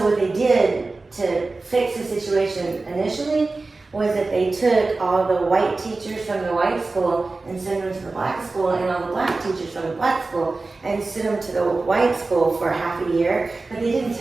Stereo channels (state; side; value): quieter; left; 3.5 dB